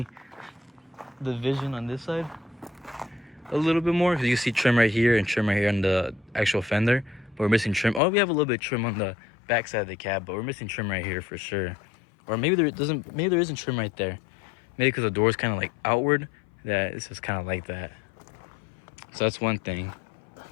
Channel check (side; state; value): right; drops out; at 8.0 s